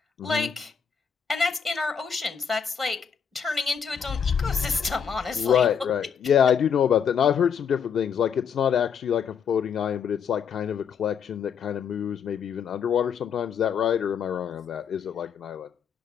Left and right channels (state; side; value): quieter; right; 7.1 dB